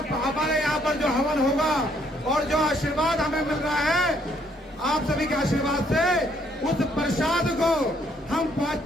हमारे यहाँ पर जो हवन होगा और जो आशीर्वाद हमें मिल रहा है आप सभी के आशीर्वाद से, उस प्रसाद को हम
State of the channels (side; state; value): both; normal; correlation 0.68